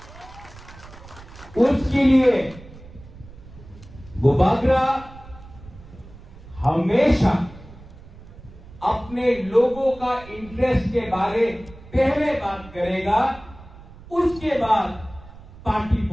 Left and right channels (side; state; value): right; noise; rumble, 19 dB below the sound